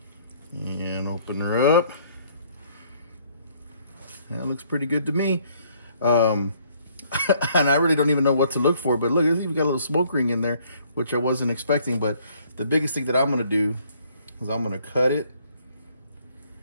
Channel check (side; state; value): both; inverted; correlation -0.64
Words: And open her up. That looks pretty good to me. And I really don't even know what to look for, but look, it's even got a little smoke ring in there, which I wasn't expecting. But the biggest thing that I'm gonna do is I'm gonna cut it